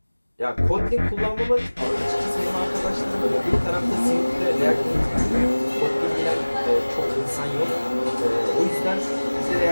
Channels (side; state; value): both; inverted; correlation -1.00